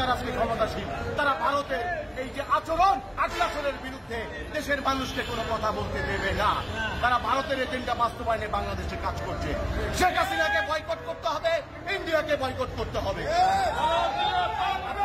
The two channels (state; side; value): identical; both; correlation 1.00